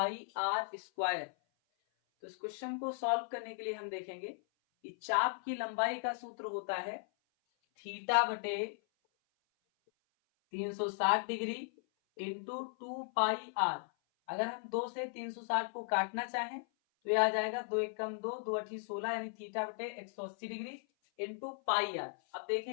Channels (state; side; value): silent; right; 53 dB below the other